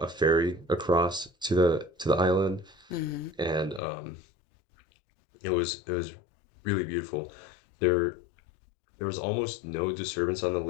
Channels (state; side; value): drops out; right; at 3.8 s